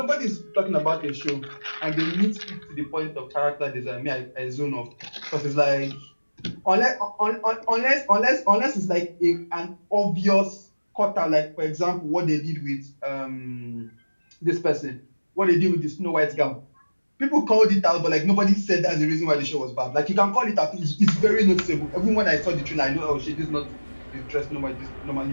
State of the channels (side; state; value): both; inverted; correlation -1.00